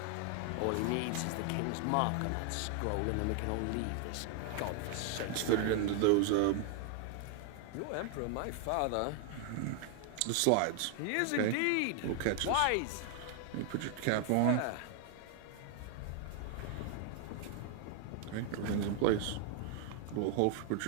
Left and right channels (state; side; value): different; both; correlation 0.00